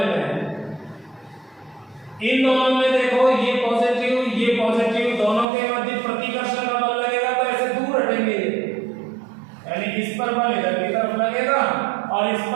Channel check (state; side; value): drops out; left; at 5.5 s